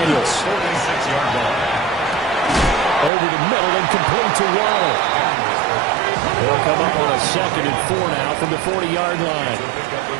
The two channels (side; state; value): left; drops out; at 3.1 s